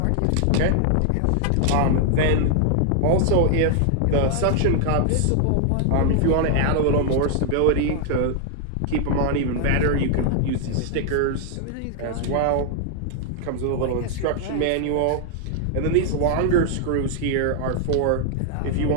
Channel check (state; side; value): different; both; correlation 0.00